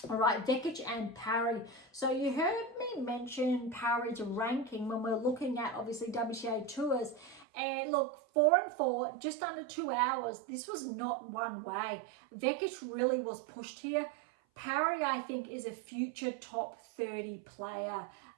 All right, Vekic and Parry. So you heard me mention Parry's ranking when we're looking at, obviously, WTA tours. And look, 4-4, just under 2 hours. This was not one way. Vekic really was pushed here. Parry, I think, is a future top 30 player,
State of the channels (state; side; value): drops out; left; at 7.5 s